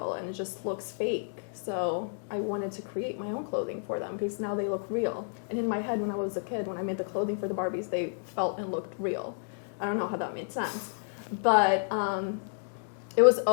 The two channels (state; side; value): silent; right; digital silence